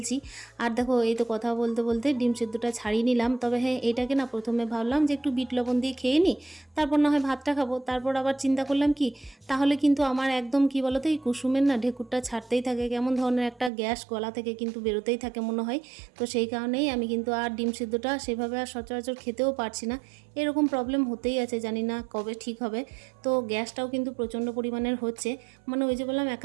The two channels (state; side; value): drops out; left; at 13.7 s